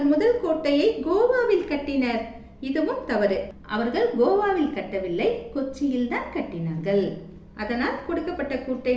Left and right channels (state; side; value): identical; both; correlation 1.00